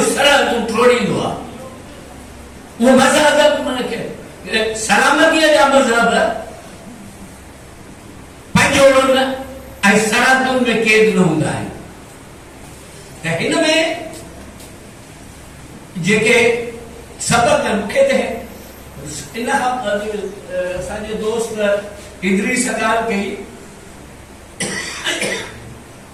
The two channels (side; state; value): both; identical; correlation 1.00